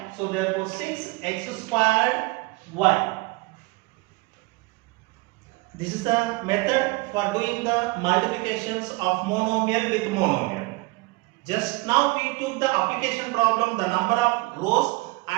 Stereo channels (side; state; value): left; quieter; 24.5 dB